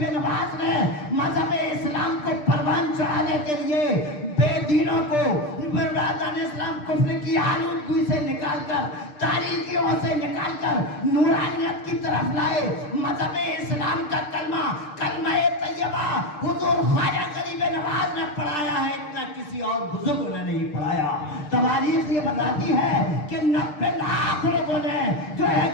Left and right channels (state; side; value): late; right; 6.7 ms